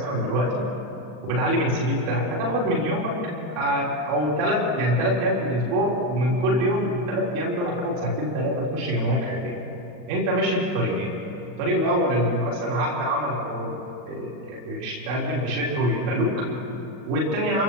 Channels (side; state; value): left; late; 40 ms